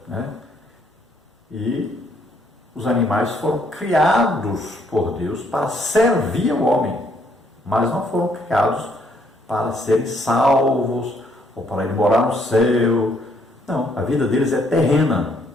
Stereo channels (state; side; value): normal; both; correlation 0.69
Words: né? E os animais foram criados por Deus para servir ao homem, mas não foram criados para serem salvos ou para ir morar no céu. Não, a vida deles é terrena.